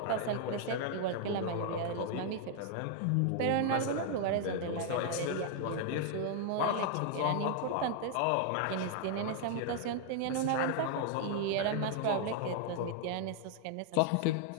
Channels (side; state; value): both; different; correlation 0.00